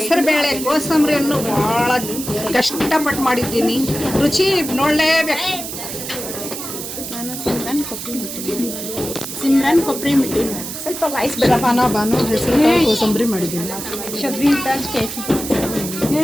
ಕೋಸಂಬರಿಯನ್ನು ಭಾಳ ಕಷ್ಟಪಟ್ಟು ಮಾಡಿದ್ದೀನಿ. ರುಚಿ ನೋಡಲೇಬೇಕು. ನಾನು ಸಿಮ್ರನ್ ಕೊಬ್ಬರಿ ಮಿಟ್ಟಿ ಸ್ವಲ್ಪ ವಾಯ್ಸ್ ಶಬಾನ ಬಾನು ಹೆಸರು ಕೋಸಂಬರಿ ಮಾಡಿದ್ದೀನಿ. ಶಬ್ರೀನ್ ತಾಜ್ ಕೇಸರಿ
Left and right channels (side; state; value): right; noise; hiss, 8 dB below the sound